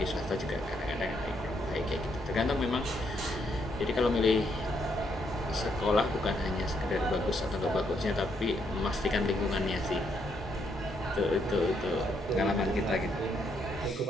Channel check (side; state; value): both; normal; correlation 0.75